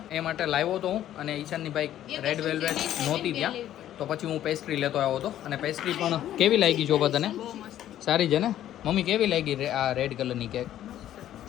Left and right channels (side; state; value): right; quieter; 12.0 dB